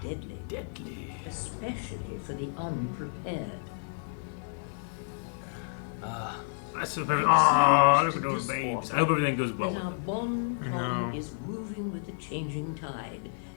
deadly. Deadly. Especially for the unprepared. That's the perfect. Oh, look at those babes. I hope everything goes well That with our them. bon I ton know. is moving with the changing tide,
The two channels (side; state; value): right; silent; digital silence